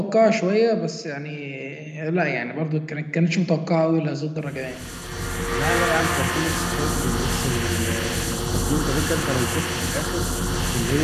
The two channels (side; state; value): both; identical; correlation 1.00